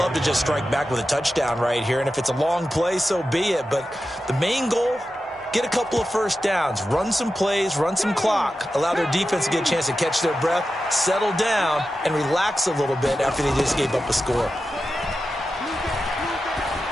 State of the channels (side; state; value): both; normal; correlation 0.92